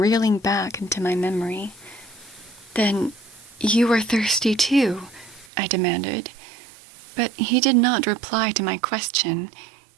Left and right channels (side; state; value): left; drops out; at 5.5 s